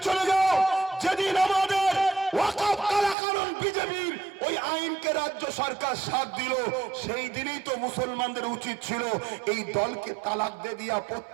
চলে যাও, যেদিন আমাদের ওয়াকফ কালাকানুন বিজেপির ওই আইনকে রাজ্য সরকার সাথ দিল, সেই দিনই তো মুসলমানদের উচিত ছিল এই দলকে তালাক দিয়ে দিয়া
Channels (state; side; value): drops out; left; at 3.2 s